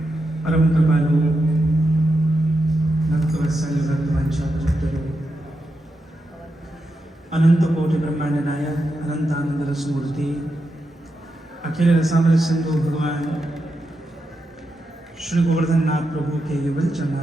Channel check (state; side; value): normal; both; correlation 0.86